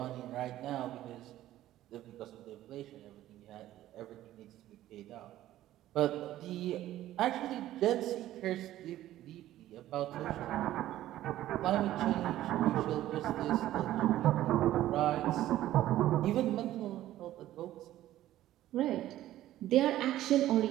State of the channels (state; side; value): quieter; left; 13.9 dB